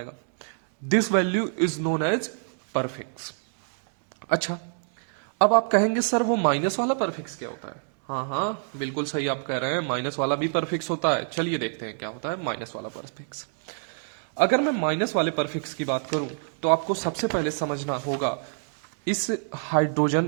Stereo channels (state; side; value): silent; left; 61 dB below the other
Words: This value is known as prefix. अच्छा, अब आप कहेंगे सर वो माइनस वाला परफिक्स क्या होता है? हाँ, बिल्कुल सही आप कह रहे हैं, माइनस वाला भी परफिक्स होता है. चलिए देखते हैं क्या होता है माइनस वाला परफिक्स. अगर मैं माइनस वाले परफिक्स की बात करूं तो आपको सबसे पहले समझना होगा इस